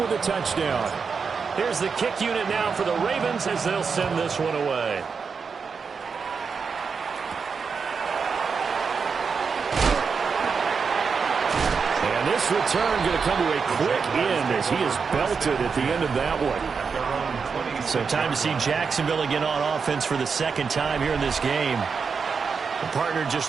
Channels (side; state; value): left; quieter; 5.6 dB